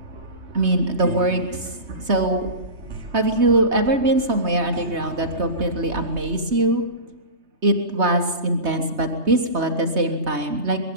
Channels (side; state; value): left; late; 3.2 ms